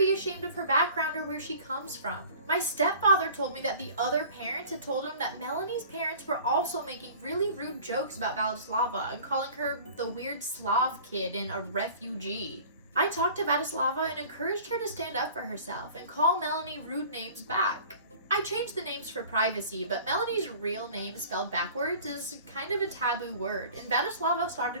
ashamed of her background or where she comes from. My stepfather told me that the other parents had told him that Melanie's parents were also making really rude jokes about Vladislava and calling her the weird Slav kid and a refugee. I talked to Vladislava and encouraged her to stand up for herself and call Melanie rude names back. I changed the names for privacy, but Melanie's real name spelled backwards is kind of a taboo word, and Vladislava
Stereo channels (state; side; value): inverted; both; correlation -0.45